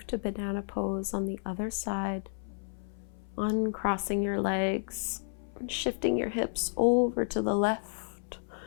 to banana pose on the other side, uncrossing your legs and shifting your hips over to the left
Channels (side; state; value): right; silent; 57 dB below the other